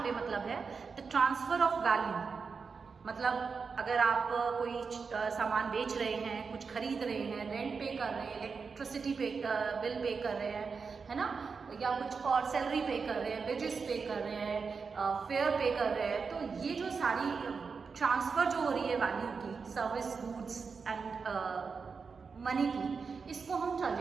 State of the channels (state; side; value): quieter; left; 5.2 dB